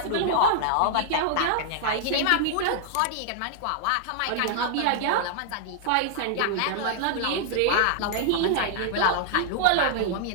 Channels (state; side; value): different; both; correlation -0.01